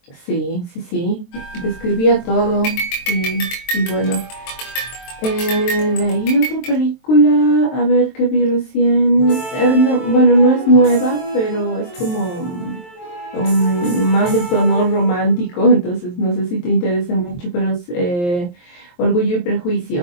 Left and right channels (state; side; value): late; right; 23 ms